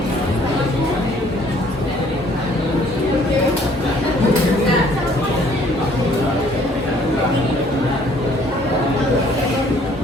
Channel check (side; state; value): both; normal; correlation 0.60